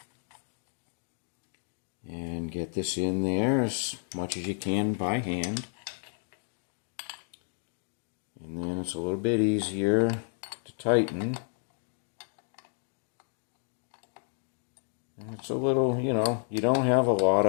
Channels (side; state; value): right; silent; 57 dB below the other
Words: And get this in there as much as you can by hand. And then it's a little bit easier to tighten. And it's a little, you know, you don't have a lot